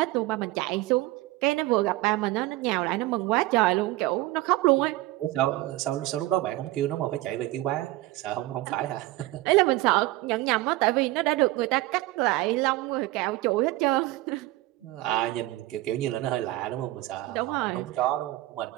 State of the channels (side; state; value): left; quieter; 18.2 dB